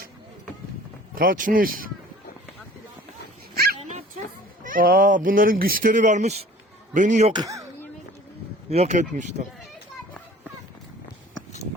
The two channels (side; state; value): both; normal; correlation 0.48